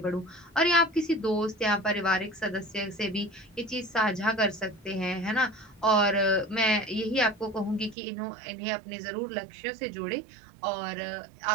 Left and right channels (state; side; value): drops out; left; at 8.0 s